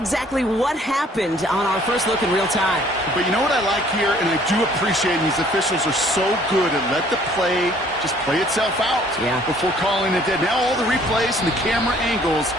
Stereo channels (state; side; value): normal; both; correlation 0.58